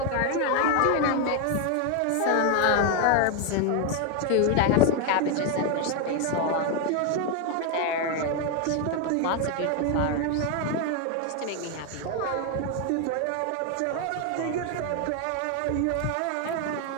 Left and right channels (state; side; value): different; both; correlation 0.01